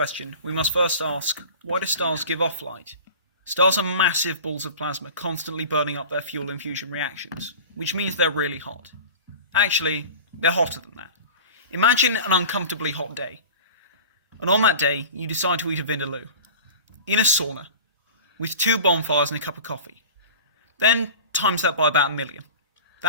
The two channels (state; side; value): inverted; both; correlation -0.37